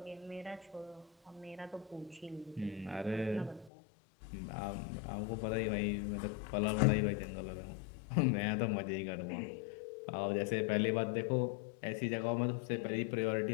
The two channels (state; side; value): drops out; right; at 3.7 s